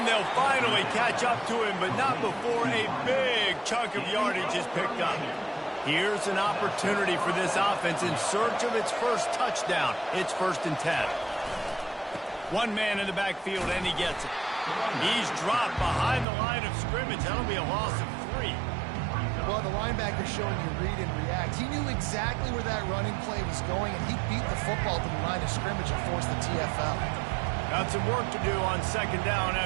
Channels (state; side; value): drops out; left; at 16.2 s